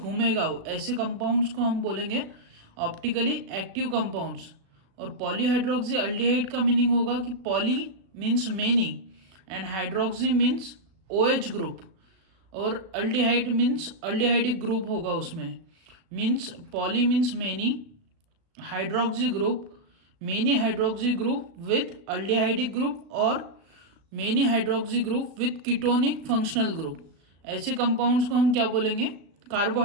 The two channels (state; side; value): late; left; 36 ms